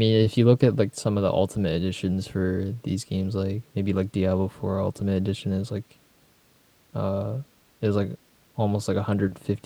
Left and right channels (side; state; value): both; identical; correlation 1.00